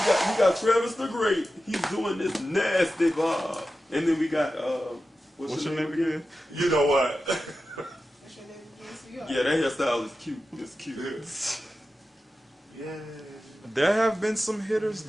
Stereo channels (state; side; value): normal; both; correlation 0.93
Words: we got Travis the Great. He's doing this nasty vibe. And then we got What's your name again? you know what? What's your name again? So you are- Yeah, that hairstyle is cute. It's cute. Yeah. There have been some hitters